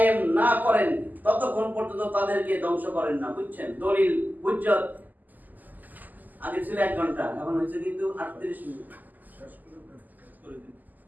না করেন ততক্ষণ পর্যন্ত তাদেরকে ধ্বংস করেন না। বুঝছেন? দলিল হুজ্জত আগে ছিল 1 ঘন্টা, এখন হয়েছে কিন্তু 38 মিনিট।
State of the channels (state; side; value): late; left; 0.084 ms